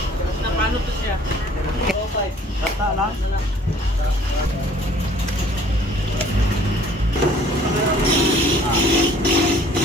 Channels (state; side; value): normal; both; correlation 0.55